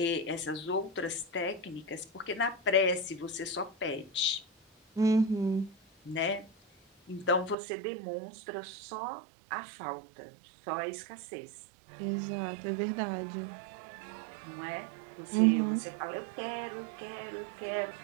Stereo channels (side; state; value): left; drops out; at 7.6 s